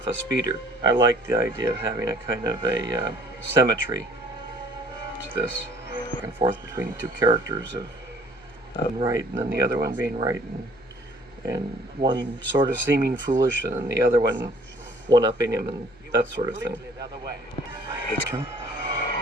a speeder. I like the idea of having a kind of a symmetry to this, back and forth between the two characters of right and then the other one being right, and one sort of seeming foolish and then the other one-upping him and that sort of thing.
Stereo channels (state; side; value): noise; left; hum, 27 dB below the sound